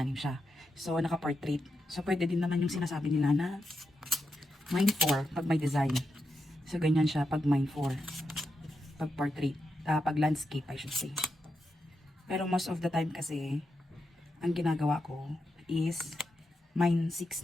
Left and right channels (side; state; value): both; normal; correlation 0.86